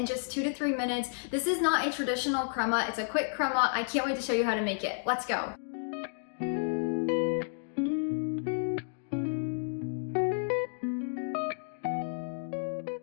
just 2 to 3 minutes. This is not a traditional crema. It's a quick crema. I can't wait to show you how to make it. Let's go.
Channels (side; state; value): right; silent; digital silence